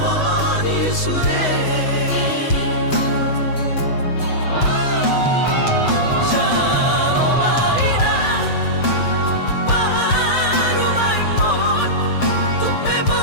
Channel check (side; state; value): right; late; 7.8 ms